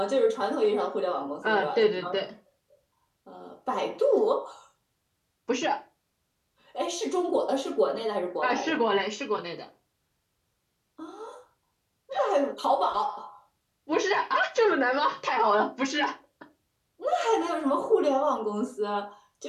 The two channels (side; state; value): both; identical; correlation 1.00